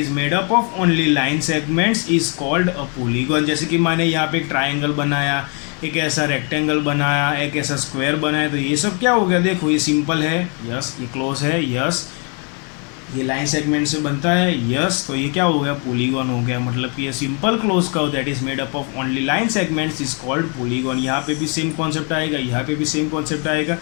made up of only line segments is called a polygon. जैसे कि मैंने यहाँ पे एक ट्राइंगल बनाया, एक ऐसा रेक्टेंगल बनाया, एक ऐसा स्क्वायर बनाया, तो ये सब क्या हो गया, देखो ये सिंपल है, यस, ये क्लोज है, यस, ये लाइन सेगमेंट से बनता है, यस, तो ये क्या हो गया, पॉलीगॉन हो गया। मतलब कि ये simple close curve that is made up of only line segments is called polygon. यहाँ पे भी सेम कॉन्सेप्ट आएगा, यहाँ पे भी सेम कॉन्सेप्ट आएगा।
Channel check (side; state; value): right; quieter; 36.6 dB